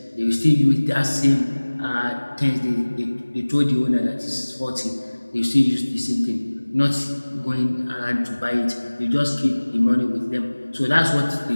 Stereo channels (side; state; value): both; inverted; correlation -1.00